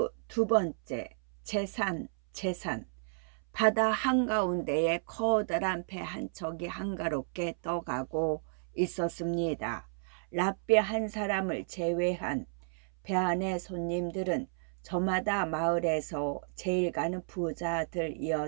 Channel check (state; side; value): silent; left; 56 dB below the other